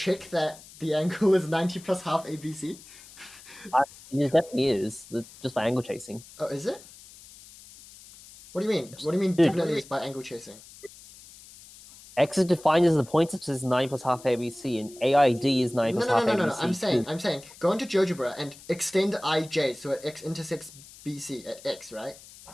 that the angle is 90 plus half ABC. It definitely is, just by angle chasing. Oh, is it? What do you mean? What do you mean Dude. definitely is by angle chasing? X is defined as the point such as 9 plus half ABC, and AID is 9 plus half ABC. No. I'm saying, go into GeoGebra and extend IJ so x intersects BC at x, right?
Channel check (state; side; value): noise; left; hiss, 20 dB below the sound